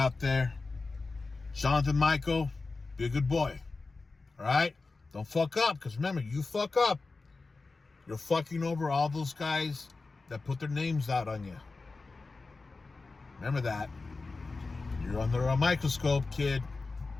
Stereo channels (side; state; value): right; quieter; 3.8 dB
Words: there. Jonathan Michael, be a good boy. All right? Don't fuck up, because remember, you fuck up, you're fucking over all those guys that put their names out on you. Remember that. You're under a microscope, kid.